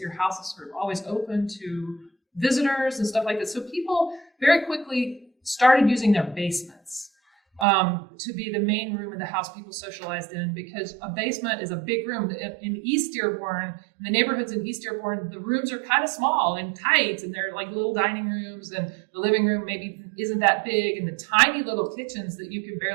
house is sort of always open to visitors and stuff like that. So people very quickly started using their basements to be the main room of the house people socialized in, because a basement is a big room. In East Dearborn, in the neighborhoods in East Dearborn, the rooms are kind of small and tight, and they're like little dining rooms, and the living room maybe isn't that big, and the tiny little kitchens that you can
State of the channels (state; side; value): drops out; left; at 7.7 s